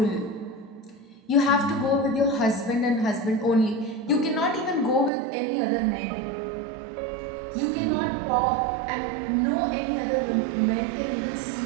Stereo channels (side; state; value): left; drops out; at 5.1 s